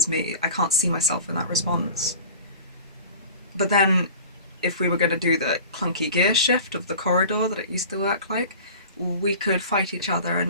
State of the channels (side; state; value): both; inverted; correlation -0.40